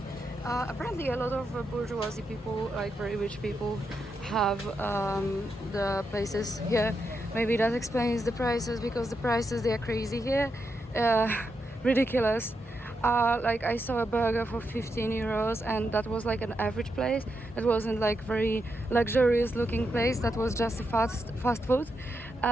Apparently a lot of bourgeoisie people, like very rich people, have the places here. Maybe that explains the prices, because the prices, they are crazy here. Ridiculous. Like I saw a burger for 15 euros, and that was like an average place. It wasn't like very luxurious looking place. That was just a fast food.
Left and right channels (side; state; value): both; normal; correlation 0.84